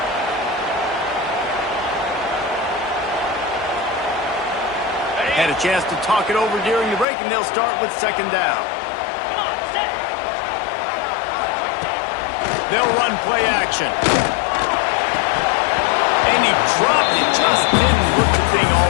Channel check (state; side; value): drops out; right; at 7.1 s